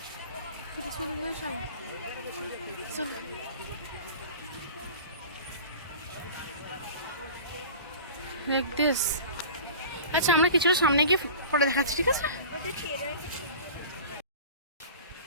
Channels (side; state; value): both; inverted; correlation -0.39